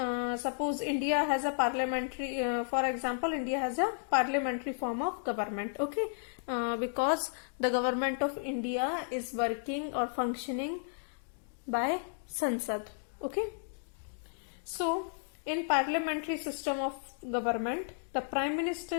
suppose India has a parliamentary, for example, India has a parliamentary form of government. Okay, because the government of India is working or functioning by Sansad. Okay, so in parliamentary system of government, the prime minister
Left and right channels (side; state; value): right; silent; digital silence